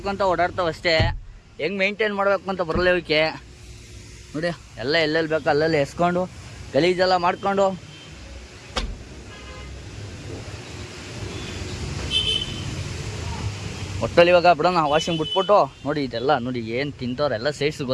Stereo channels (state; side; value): identical; both; correlation 1.00